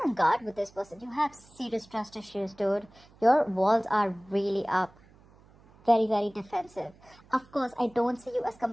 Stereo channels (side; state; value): right; noise; hum, 27 dB below the sound